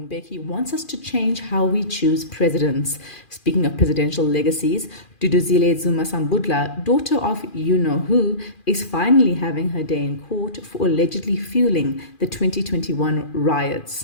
Mbeki wants us to change how we choose presidents. Speaking of presidential legacies, Duduzile Zuma-Sambudla, daughter of you-know-who, is finally having her day in court for allegedly fueling the 2021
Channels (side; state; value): right; late; 2.4 ms